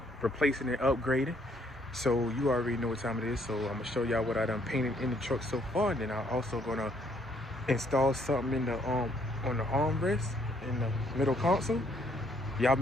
replacing and upgrading. So you already know what time it is. So I'm gonna show y'all what I done painted in the truck so far, and then I'm also gonna install something in the on the armrest in the middle console. Y'all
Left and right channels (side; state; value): both; normal; correlation 0.67